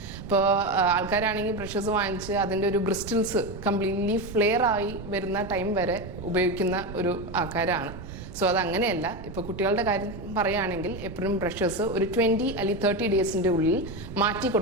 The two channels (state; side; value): noise; right; rumble, 11 dB below the sound